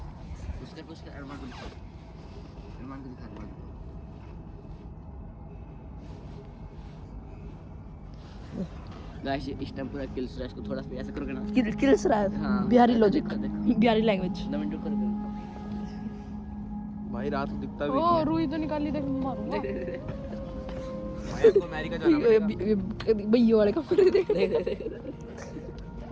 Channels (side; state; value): both; identical; correlation 1.00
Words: उसके अरमान को दिखा, अरमान को दिखा। गाइस इस टाइम पूरा किल क्रैश को थोड़ा सा ऐसे करोगे ना, किल्स रहा है। हाँ। बिहारी लॉजिक, देखो। बिहारी लैंग्वेज। 2 मिनट करोगे भाई रात को दिखता भी ओ नहीं रुई तो निकाल ली, देख मारूंगा। है। भाई आपको अमेरिका जाना पड़ेगा। भैया वाले कपड़े देख।